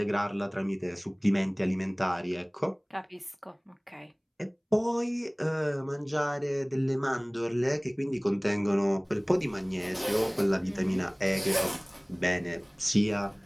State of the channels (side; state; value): both; identical; correlation 1.00